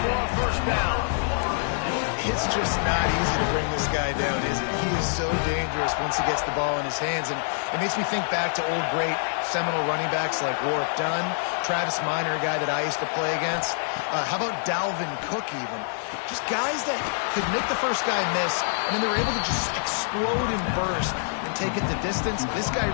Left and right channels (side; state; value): right; silent; 61 dB below the other